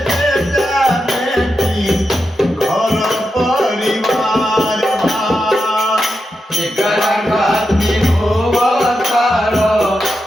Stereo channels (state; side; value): normal; both; correlation 0.88